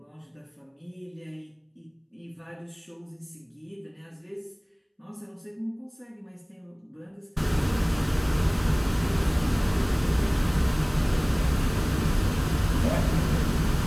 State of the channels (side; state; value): both; identical; correlation 1.00